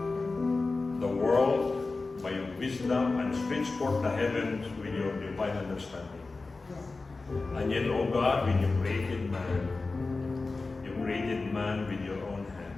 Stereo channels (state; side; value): quieter; right; 3.7 dB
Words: the world by your wisdom and stretch forth the heavens with your divine understanding. And yet, O God, when you created man with your own hand.